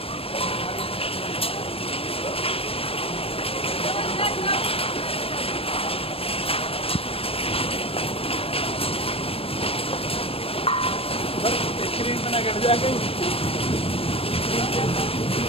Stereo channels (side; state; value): right; late; 0.27 ms